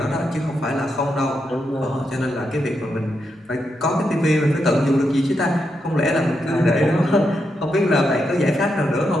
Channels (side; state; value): both; normal; correlation 0.83